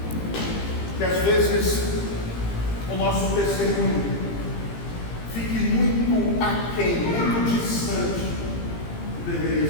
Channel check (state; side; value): late; right; 17 ms